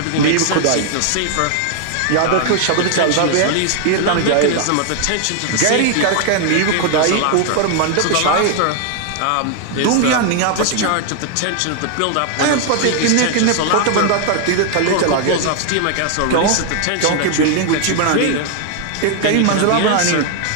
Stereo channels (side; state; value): both; different; correlation 0.00